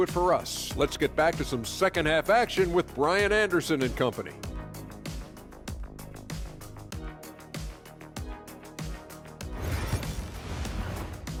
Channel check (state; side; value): identical; both; correlation 1.00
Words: it for us. Let's get back to some second half action with Brian Anderson and company.